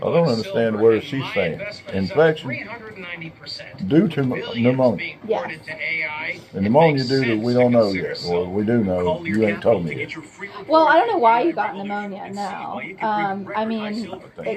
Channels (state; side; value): identical; both; correlation 1.00